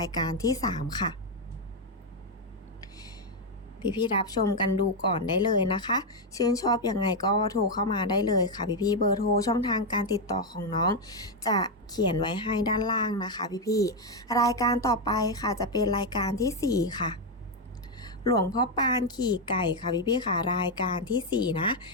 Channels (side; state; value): both; normal; correlation 0.03